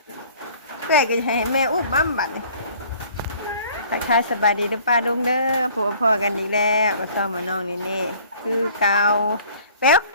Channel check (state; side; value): inverted; both; correlation -0.53